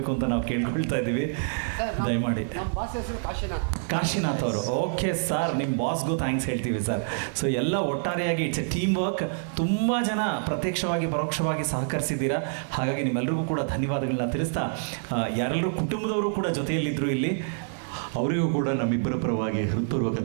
ಅಂತ ನಾವು ಕೇಳ್ಕೊಳ್ತಾ ಇದ್ದೀವಿ. ದಯಮಾಡಿ. ಕಾಶಿನಾಥ್ ಅವರು, ಓಕೆ ಸರ್, ನಿಮ್ಮ ಬಾಸ್ಗೂ ಥ್ಯಾಂಕ್ಸ್ ಹೇಳ್ತೀವಿ ಸರ್. ಸೊ ಎಲ್ಲ ಒಟ್ಟಾರೆಯಾಗಿ ಇಟ್ಸ್ ಎ ಟೀಮ್ ವರ್ಕ್. ತುಂಬ ಜನ ಪ್ರತ್ಯಕ್ಷವಾಗಿ ಪರೋಕ್ಷವಾಗಿ ಸಹಕರಿಸಿದ್ದೀರಾ. ಹಾಗಾಗಿ ನಿಮ್ಮೆಲ್ಲರಿಗೂ ಕೂಡ ಧನ್ಯವಾದಗಳನ್ನ ತಿಳಿಸ್ತಾ, ಯಾರೆಲ್ಲರೂ ಕುಟುಂಬದವರು ಕೂಡ ಜೊತೆಯಲ್ಲಿದ್ದರು ಇಲ್ಲಿ, ಅವರಿಗೂ ಕೂಡ ನಮ್ಮಿಬ್ಬರ ಪರವಾಗಿ ಹೃತ್ಪೂರ್ವಕ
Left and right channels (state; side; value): silent; left; digital silence